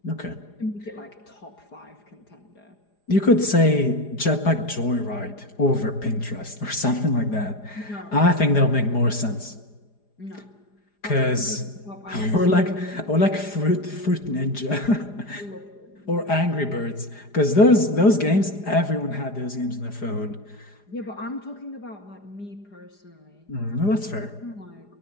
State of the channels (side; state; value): right; late; 4.9 ms